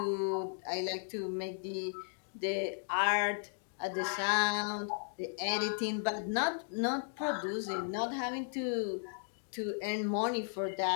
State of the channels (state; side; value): silent; right; digital silence